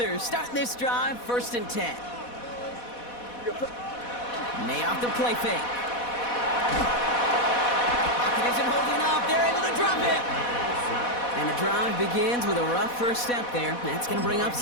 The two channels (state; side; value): late; right; 4.1 ms